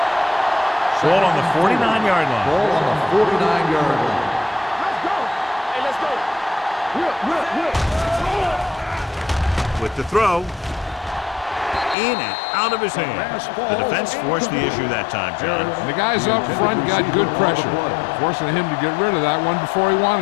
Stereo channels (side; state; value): right; drops out; at 12.0 s